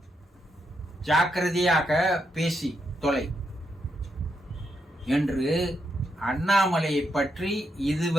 ஜாக்கிரதையாக பேசி தொலை என்று அண்ணாமலையை பற்றி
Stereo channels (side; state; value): both; normal; correlation 0.81